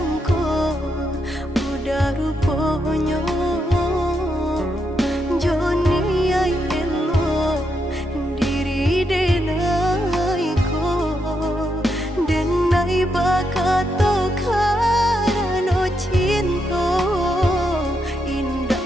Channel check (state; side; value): normal; both; correlation 0.81